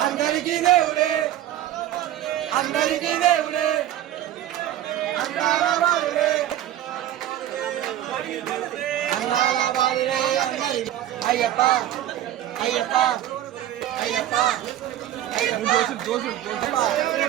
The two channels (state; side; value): quieter; left; 12.4 dB